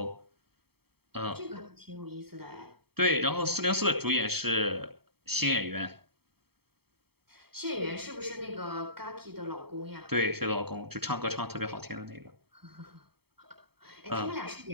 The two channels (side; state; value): left; late; 0.96 ms